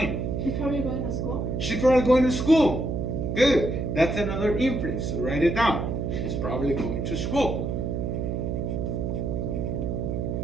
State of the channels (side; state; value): right; noise; hum, 1 dB below the sound